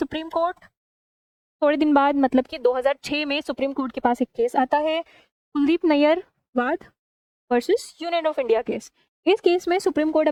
कोर्ट, थोड़े दिन बाद मतलब कि 2006 में सुप्रीम कोर्ट के पास एक केस आता है, कुलदीप नैयर वाद versus union of India case. इस केस में सुप्रीम कोर्ट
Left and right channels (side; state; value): both; identical; correlation 1.00